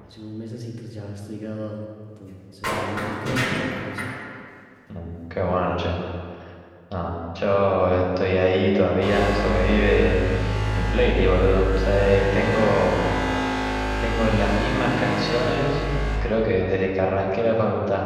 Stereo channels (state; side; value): identical; both; correlation 1.00